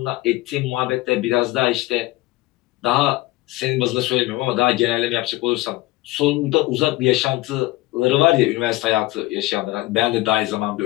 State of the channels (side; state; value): right; quieter; 19.0 dB